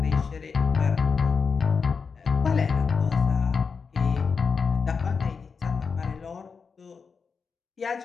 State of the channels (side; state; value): right; quieter; 5.4 dB